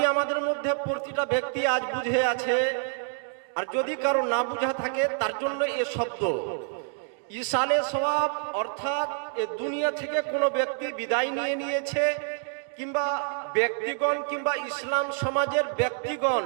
আমাদের মধ্যে প্রতিটা ব্যক্তি আজ বুঝে আছে, আর যদি কারো না বুঝা থাকে তার জন্য এ শব্দ ইসালে সওয়াব, অর্থাৎ এ দুনিয়া থেকে কোনো ব্যক্তি বিদায় নিয়ে নিয়েছে, কিংবা ব্যক্তিগণ কিংবা ইসলাম সমাজের ব্যক্তিগণ,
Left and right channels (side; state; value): left; silent; 60 dB below the other